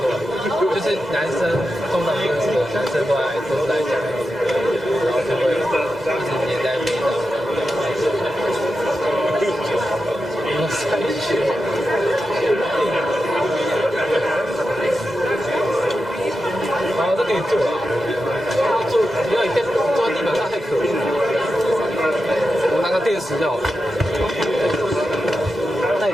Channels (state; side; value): normal; both; correlation 0.90